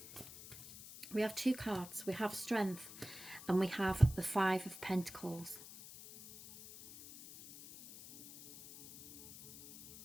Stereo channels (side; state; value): left; noise; hiss, 15 dB below the sound